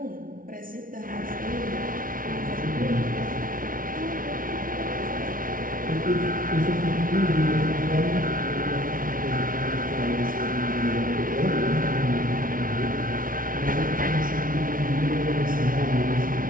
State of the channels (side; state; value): left; late; 0.40 ms